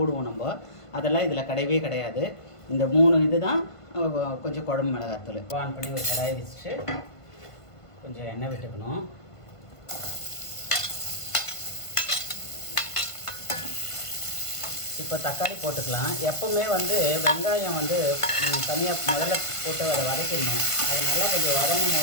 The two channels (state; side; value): late; right; 1.5 ms